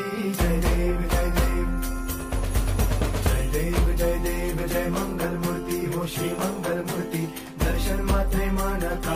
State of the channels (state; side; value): identical; both; correlation 1.00